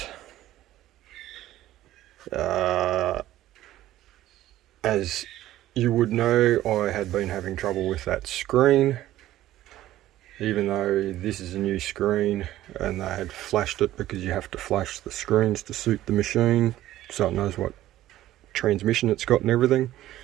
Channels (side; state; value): left; quieter; 14.3 dB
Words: As you would know, I had been having trouble with that screen, even though this is a new screen and they had flashed it, because you have to flash the screens to suit the machine so it knows what transmission it's got and everything.